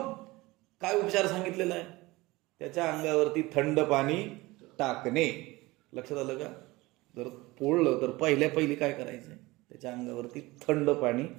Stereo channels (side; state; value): left; quieter; 21.0 dB